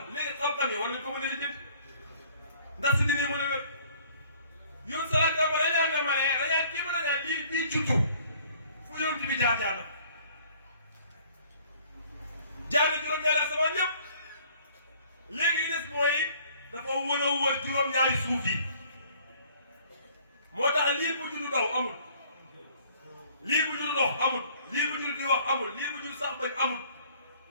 léegi xam-xam yi war nañ ko mën a lijjanti ndax si diine mën a wér yoon salaat ba dañaan ne ma ne dañaan kii ba dañaan lii bii juddu fu yonent bi jaar na juróom-ñaari asamaan yëpp léegi li des mooy dafa wër a wër juróom-ñaari suuf yi moo tax lii bu juddu daw amul lii bu juddu dox amul lii bu juddu di wax amul lii bu juddu sax bañ amul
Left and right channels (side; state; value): both; inverted; correlation -0.56